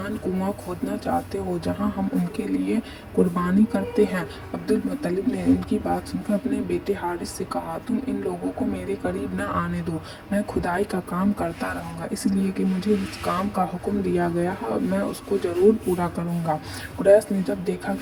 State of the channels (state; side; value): identical; both; correlation 1.00